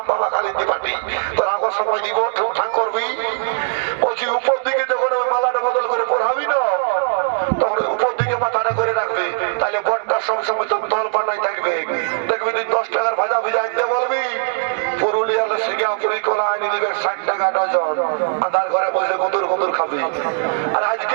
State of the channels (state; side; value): silent; left; 66 dB below the other